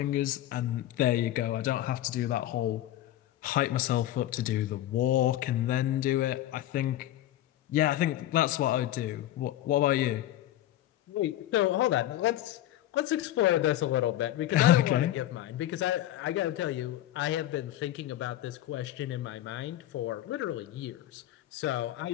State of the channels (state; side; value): quieter; right; 13.6 dB